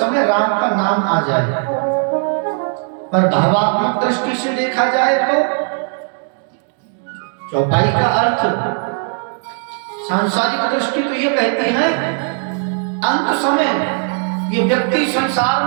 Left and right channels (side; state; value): left; silent; 55 dB below the other